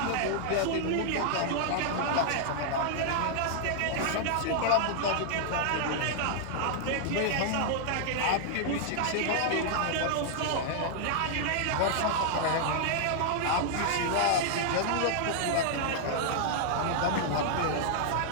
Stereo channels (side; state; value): both; different; correlation -0.01